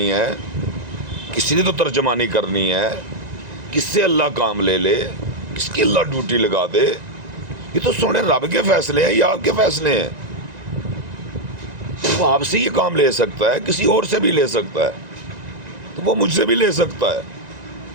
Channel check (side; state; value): left; late; 1.9 ms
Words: ہے, کسی نے تو ترجمانی کرنی ہے. کس سے اللہ کام لے لے, کس کی اللہ ڈیوٹی لگا دے. یہ تو سونے رب کے فیصلے ہیں یا آپ کے فیصلے ہیں. وہ آپ سے یہ کام لے سکتا ہے, کسی اور سے بھی لے سکتا ہے, تو وہ مجھ سے بھی لے سکتا ہے.